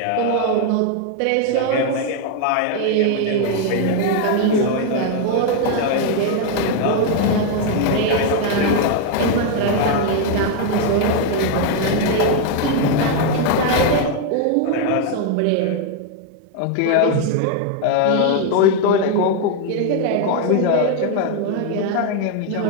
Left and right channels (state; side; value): different; both; correlation 0.01